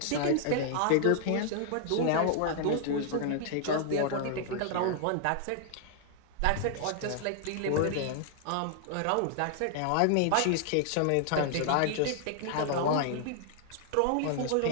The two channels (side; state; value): both; different; correlation 0.00